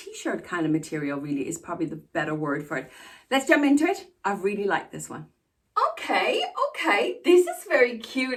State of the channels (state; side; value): identical; both; correlation 1.00